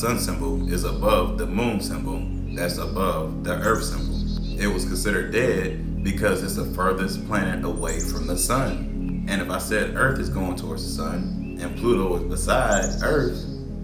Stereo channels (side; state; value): both; identical; correlation 1.00